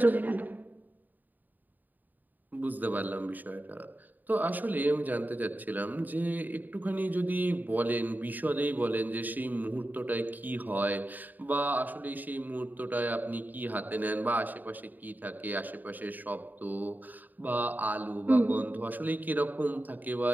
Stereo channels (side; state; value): left; late; 0.086 ms